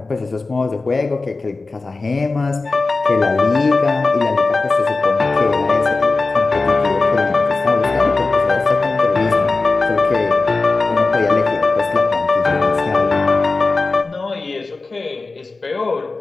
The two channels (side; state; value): right; quieter; 3.7 dB